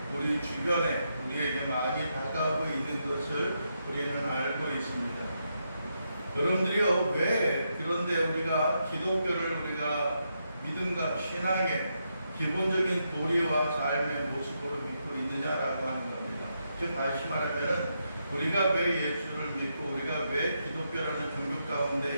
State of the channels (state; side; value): inverted; both; correlation -0.82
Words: 우리 주변에 우리에게 많이 다가오고 있는 것을 우리는 알고 있습니다. 여러분들이요, 왜 그런데 우리가 기독교를 우리가 믿음과 신앙의 기본적인 도리와 삶의 모습으로 믿고 있느냐라고 하는 겁니다. 즉 다시 말하면 우리가 왜 예수를 믿고 우리가 왜 기독교라는 종교 가운데